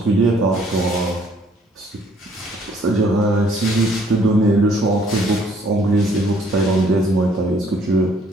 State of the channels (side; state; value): both; normal; correlation 0.63